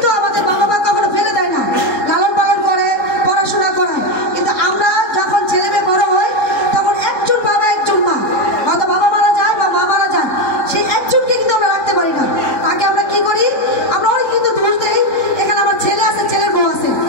আমাদের বাবা মা কখনো ফেলে দেয় না, লালন পালন করে, পড়াশোনা করায়। কিন্তু আমরা যখন ছেলে মেয়ে বড় হয় তখন একজন বাবা একজন মা, হয়তো বাবা মারা যায় বা মা মারা যায়, সেই একজনকে কিন্তু আমরা রাখতে পারি না। তাকে আমরা কি করি, আমরা অনেক কিন্তু দোষ দেই। এখানে আমার ছেলে আছে, ছেলের বউ আছে,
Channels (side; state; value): right; late; 3.6 ms